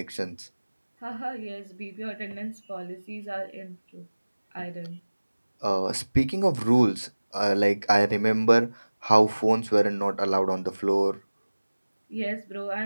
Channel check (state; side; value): inverted; both; correlation -1.00